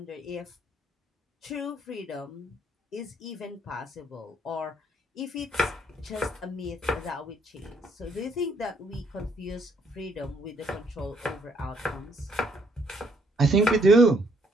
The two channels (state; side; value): normal; both; correlation 0.68